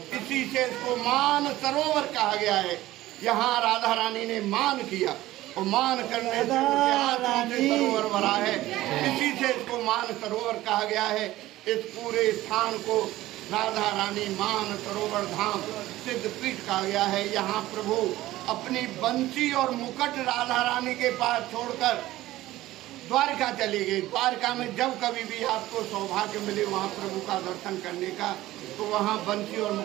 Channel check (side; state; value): left; quieter; 16.2 dB